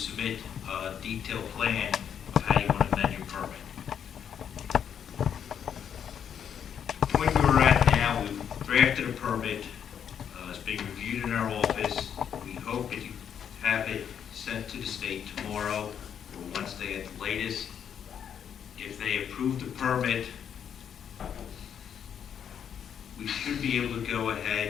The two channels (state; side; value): quieter; right; 8.4 dB